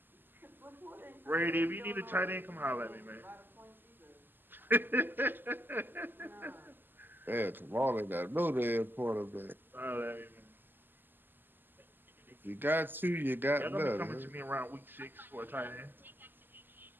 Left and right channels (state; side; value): late; left; 0.093 ms